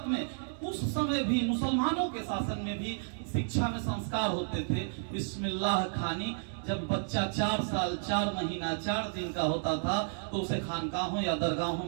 में, उस समय भी मुसलमानों के शासन में भी शिक्षा में संस्कार होते थे। बिस्मिल्लाह खानी, जब बच्चा 4 साल 4 महीना 4 दिन का होता था तो उसे खानकाहों या दरगाहों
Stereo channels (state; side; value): silent; left; digital silence